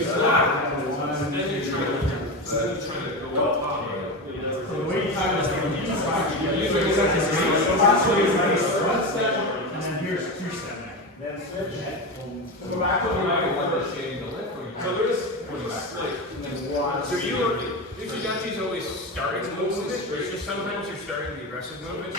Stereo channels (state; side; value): normal; both; correlation 0.19